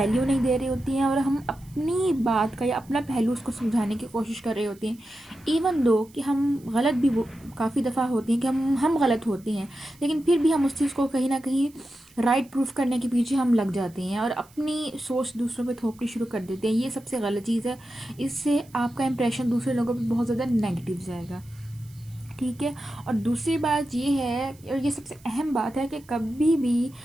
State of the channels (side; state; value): right; noise; hiss, 27 dB below the sound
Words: नहीं दे रहे होती हैं और हम अपनी बात का या अपना पहलू उसको समझाने की कोशिश कर रहे होते हैं। इवन दो कि हम गलत भी काफ़ी दफ़ा होती हैं कि हम गलत होते हैं, लेकिन फिर भी हम उस चीज़ को कहीं ना कहीं राइट प्रूफ करने के पीछे हम लग जाते हैं और अपनी सोच दूसरों पे थोपनी शुरू कर देते हैं। ये सबसे गलत चीज़ है। इससे आपका इंप्रेशन दूसरे लोगों पे बहुत ज़्यादा नेगेटिव जाएगा। ठीक है। और दूसरी बात ये है और ये सबसे अहम बात है कि कभी भी